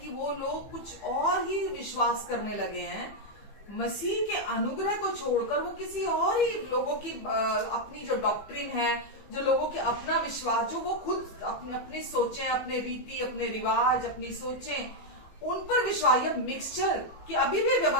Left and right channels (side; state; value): right; late; 15 ms